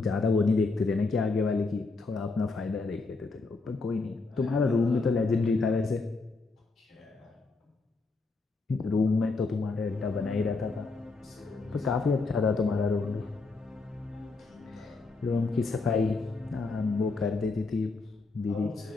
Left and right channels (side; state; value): right; quieter; 3.8 dB